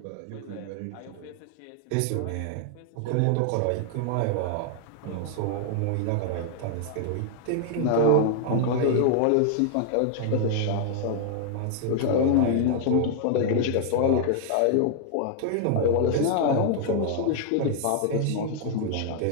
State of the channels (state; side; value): different; both; correlation 0.00